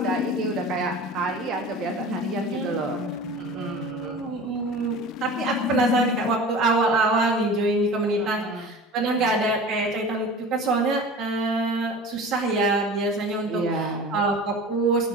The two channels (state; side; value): normal; both; correlation 0.37